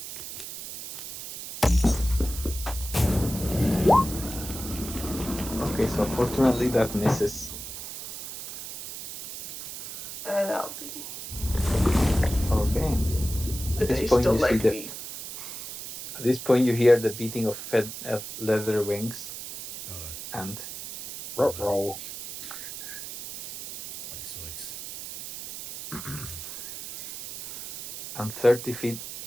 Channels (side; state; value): right; noise; hiss, 10 dB below the sound